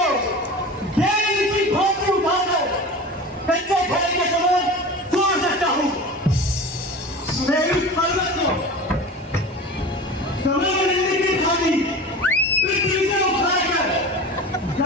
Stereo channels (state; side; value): normal; both; correlation 0.33